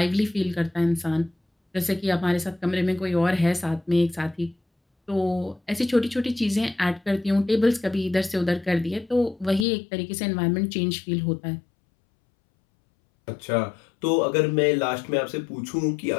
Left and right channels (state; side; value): drops out; right; at 9.7 s